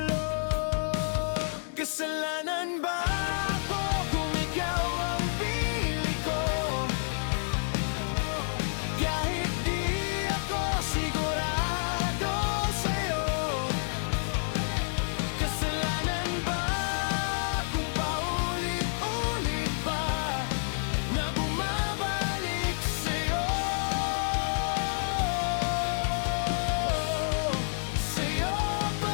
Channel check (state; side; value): silent; right; digital silence